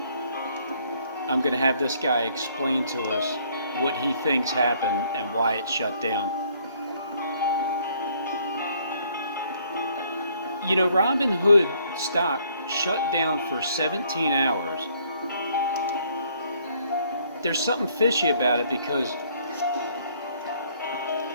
I'm going to have this guy explain to us what he thinks happened and why it shut down. You know, Robinhood stock shut down for 17 hours. There's something fishy about it because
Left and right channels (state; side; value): inverted; both; correlation -0.64